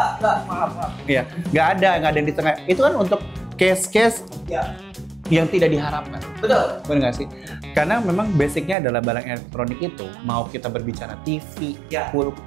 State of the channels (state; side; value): drops out; left; at 8.8 s